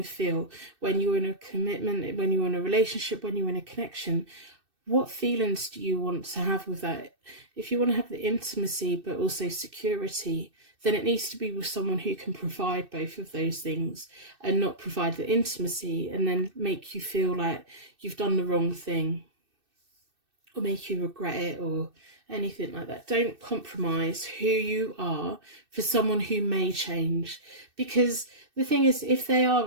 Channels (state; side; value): late; left; 2.6 ms